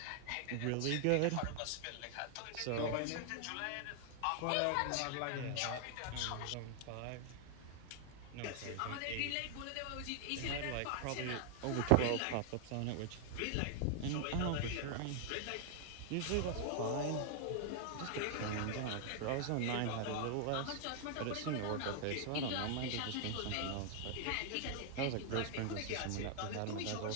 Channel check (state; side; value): different; both; correlation 0.00